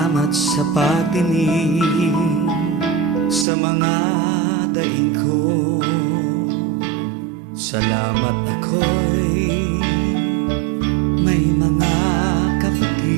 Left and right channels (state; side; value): drops out; left; at 3.5 s